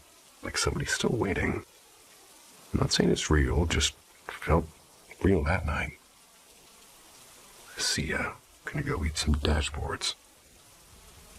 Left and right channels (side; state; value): both; identical; correlation 1.00